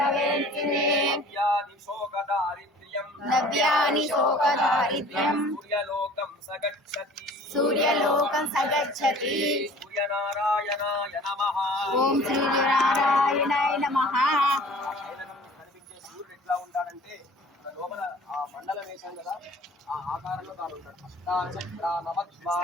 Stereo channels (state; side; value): normal; both; correlation 0.48